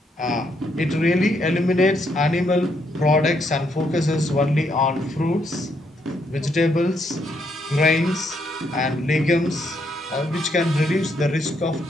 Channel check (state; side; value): normal; both; correlation 0.75